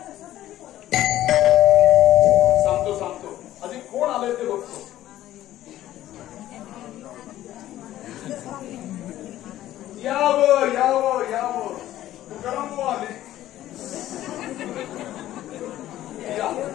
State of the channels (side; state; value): right; quieter; 13.7 dB